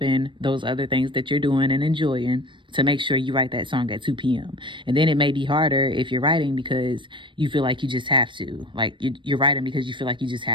those other things that you're doing and enjoying to make sure you write that song at 2 p.m. And then it may be harder if you're writing because you feel like you just have to. Like you're writing because you feel like you just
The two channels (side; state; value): left; late; 0.24 ms